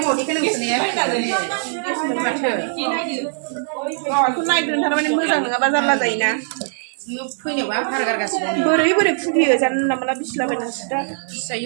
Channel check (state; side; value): silent; left; 65 dB below the other